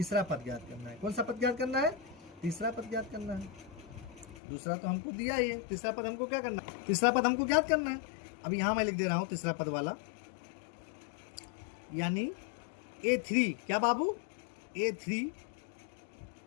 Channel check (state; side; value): drops out; right; at 4.4 s